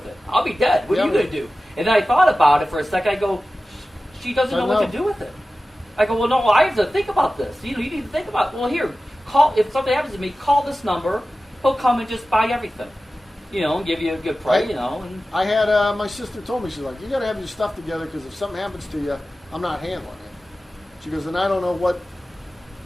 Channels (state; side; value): normal; both; correlation 0.95